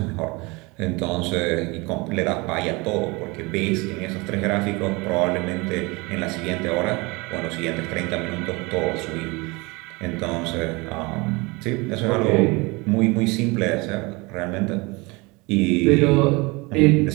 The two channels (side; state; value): left; quieter; 25.6 dB